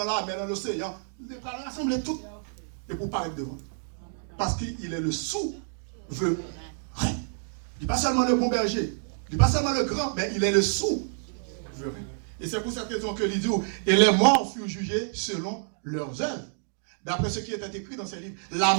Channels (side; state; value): left; silent; digital silence